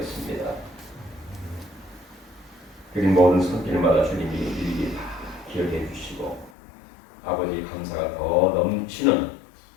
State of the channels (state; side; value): drops out; right; at 6.5 s